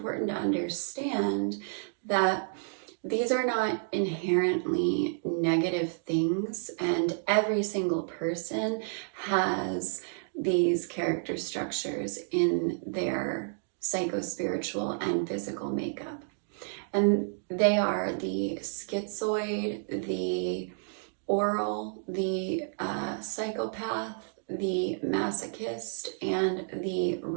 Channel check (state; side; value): silent; left; digital silence